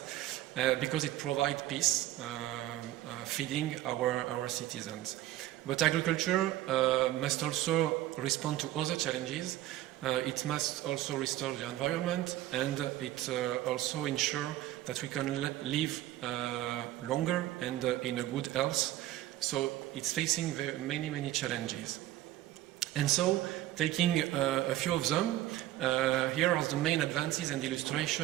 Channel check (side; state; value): left; quieter; 14.6 dB